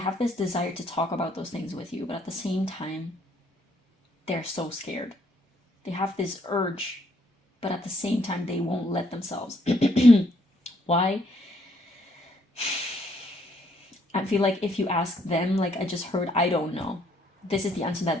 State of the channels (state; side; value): normal; both; correlation 0.68